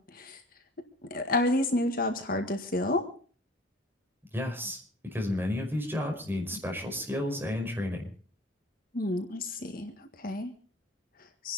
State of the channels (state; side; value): normal; both; correlation 0.47